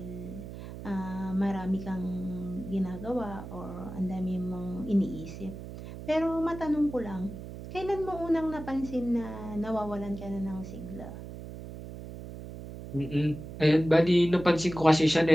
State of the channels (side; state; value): right; noise; hum, 11 dB below the sound